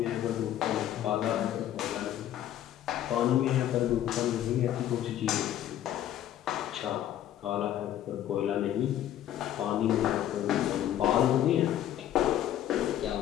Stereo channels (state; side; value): quieter; right; 11.7 dB